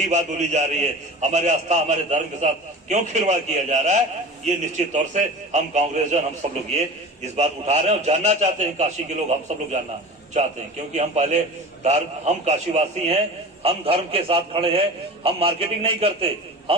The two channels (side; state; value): both; normal; correlation 0.35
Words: बात बोली जा रही है? हमारे आस्था, हमारे धर्म के साथ क्यों खिलवाड़ किया जा रहा है? ये निश्चित तौर से हम कांग्रेसजन, हम सब लोग ये इस बात उठा रहे हैं और जानना चाहते हैं। काशी के लोग, हम सब लोग जानना चाहते हैं, क्योंकि हम पहले हम काशीवासी हैं, हम धर्म के साथ खड़े हैं, हम मार्केटिंग नहीं करते,